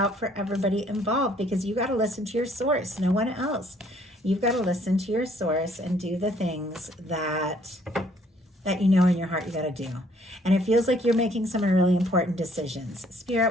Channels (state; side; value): normal; both; correlation 0.63